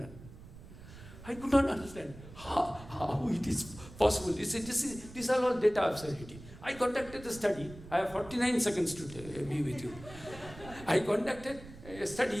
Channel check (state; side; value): noise; right; rumble, 16 dB below the sound